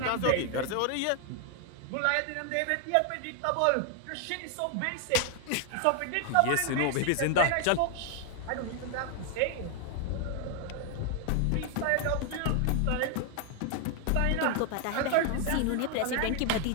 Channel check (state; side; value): different; both; correlation 0.00